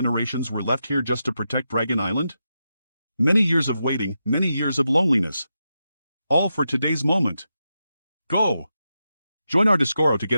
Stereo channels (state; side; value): inverted; both; correlation -0.87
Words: were left here just to protect Dragon Island? Many years of waiting, many years of loneliness. All for today's moment. Go! Join our Discoro to